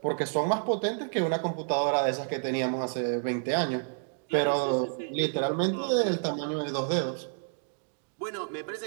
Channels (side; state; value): left; silent; digital silence